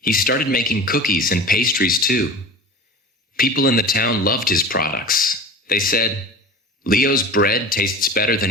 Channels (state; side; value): normal; both; correlation 0.34